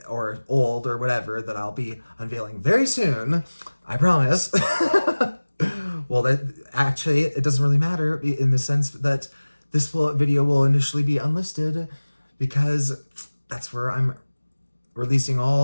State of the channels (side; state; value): both; inverted; correlation -1.00